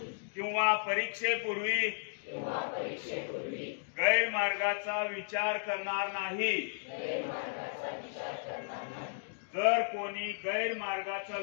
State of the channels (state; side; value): silent; right; digital silence